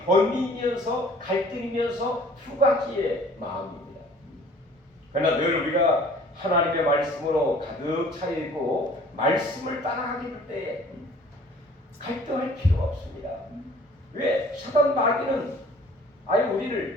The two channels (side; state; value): both; normal; correlation 0.52